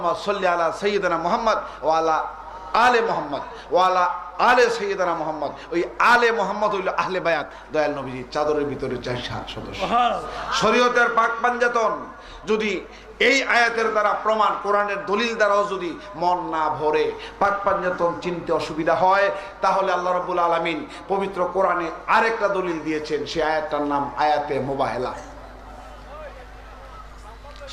সাল্লি আলা সাইয়্যিদিনা মুহাম্মদ ওয়া আলা আলে মুহাম্মদ ওয়া আলা আলে সাইয়্যিদিনা মুহাম্মদ। ওই আলে মুহাম্মদ হইল আহলে বায়াত, দয়াল নবীজির চাদরের ভিতরে 4 সদস্য। শরীয়তের পাক পাঞ্জাতন যদি এই আয়াতের দ্বারা প্রমাণ, কোরআনের দলিল দ্বারাও যদি মন না ভরে, পাক পাঞ্জাতন চিনতে অসুবিধা হয়, তাহলে আল্লাহ রাব্বুল আলামিন পবিত্র কোরআনে আরেকটা দলিল দিয়েছেন। সেই আয়াতটার নাম আয়াতে মুবাহেলা,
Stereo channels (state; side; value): identical; both; correlation 1.00